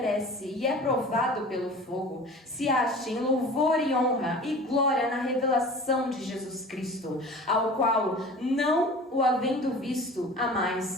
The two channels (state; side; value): normal; both; correlation 0.41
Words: e é provado pelo fogo, se ache em louvor e honra e glória na revelação de Jesus Cristo, ao qual, não o havendo visto,